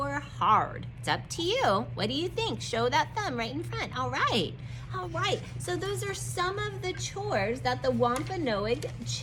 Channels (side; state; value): both; identical; correlation 1.00